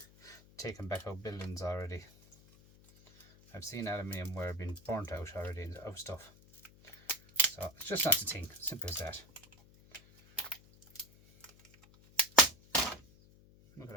taken back out buildings already. I've seen aluminium wire being burnt out already of stuff. So it's just not the thing, simple as that. Look at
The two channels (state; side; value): noise; left; hum, 25 dB below the sound